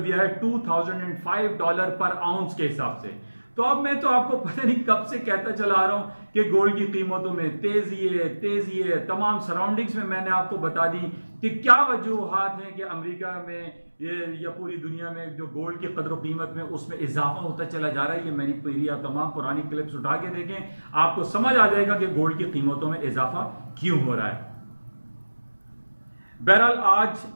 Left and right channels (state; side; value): inverted; both; correlation -1.00